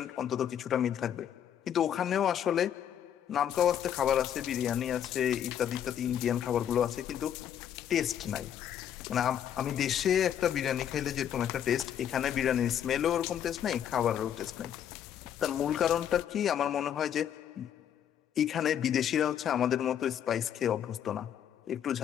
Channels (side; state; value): right; quieter; 9.6 dB